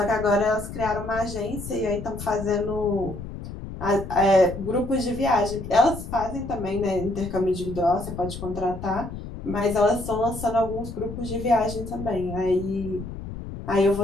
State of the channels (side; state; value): left; noise; rumble, 10 dB below the sound